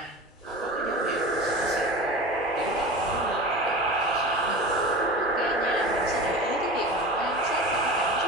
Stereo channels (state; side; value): normal; both; correlation 0.32